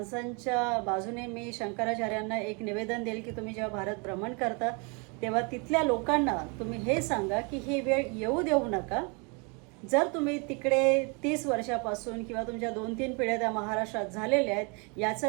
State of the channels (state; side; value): quieter; left; 32.9 dB